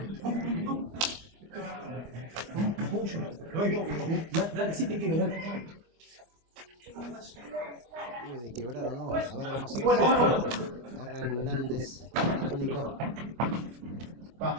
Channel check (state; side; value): late; left; 25 ms